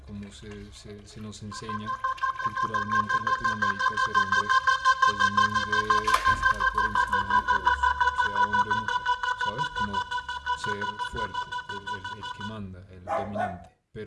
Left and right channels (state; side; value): identical; both; correlation 1.00